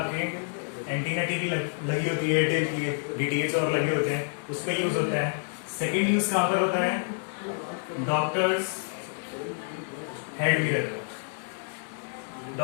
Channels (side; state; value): right; silent; 59 dB below the other